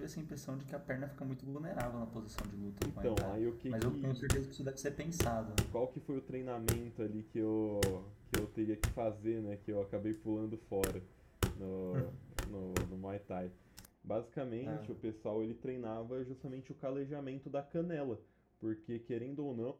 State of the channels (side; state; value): both; identical; correlation 1.00